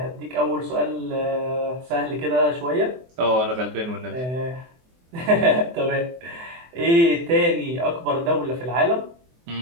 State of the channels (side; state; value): left; late; 24 ms